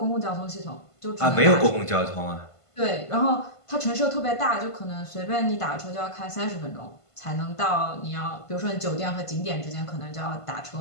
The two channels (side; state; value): right; late; 1.5 ms